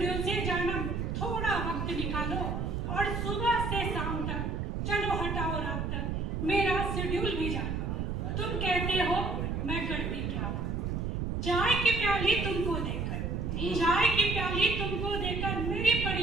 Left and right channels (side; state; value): right; noise; rumble, 1 dB below the sound